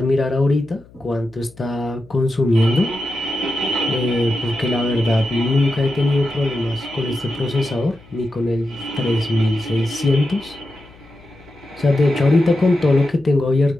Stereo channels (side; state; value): left; noise; hum, 25 dB below the sound